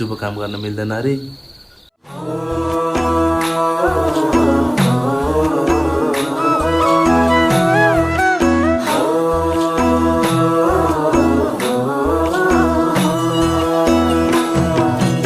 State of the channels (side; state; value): both; identical; correlation 1.00